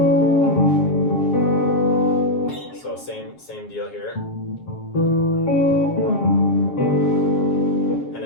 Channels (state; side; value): late; right; 7.5 ms